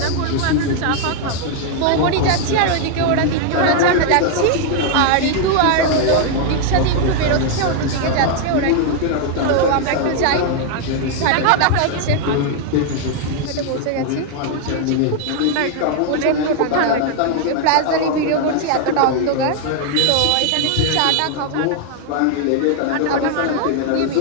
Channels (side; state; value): both; different; correlation 0.00